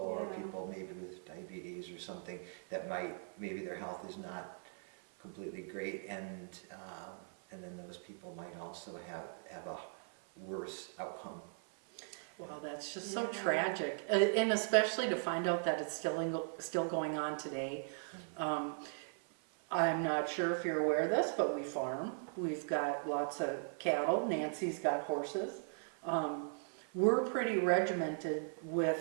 Yeah. people maybe with diabetes or something that maybe their health is not completely great, and then those people might also have a worse outcome. Well, that's just so Yeah. tragic, and especially to find out that it's still going on today. I'm not sure if you're aware of this, but we farm. We've got lots of cattle. Nancy's got horses. We're pretty regimented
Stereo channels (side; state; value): left; silent; 52 dB below the other